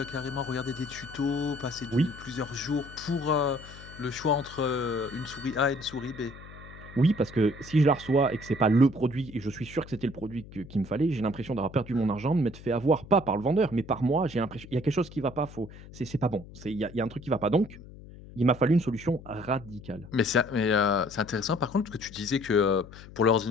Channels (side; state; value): left; noise; hum, 17 dB below the sound